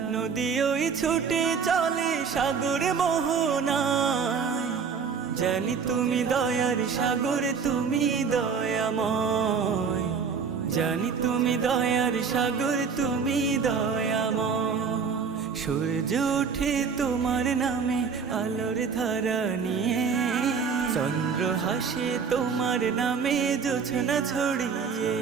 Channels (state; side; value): quieter; left; 5.9 dB